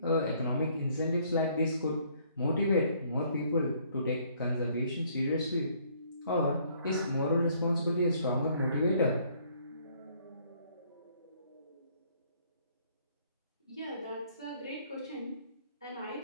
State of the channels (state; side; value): inverted; both; correlation -0.63